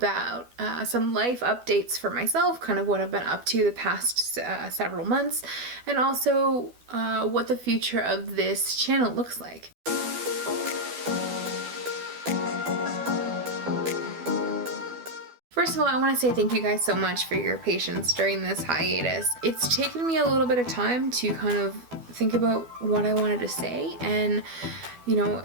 some life updates for myself, kind of what I've been up to the past several months, and also what the future of this channel looks like. First of all, I want to say thank you guys so much for your patience during this hiatus. It's taken me a little bit of time to kind of think about what I wanted to say, and you know,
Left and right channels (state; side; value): late; left; 12 ms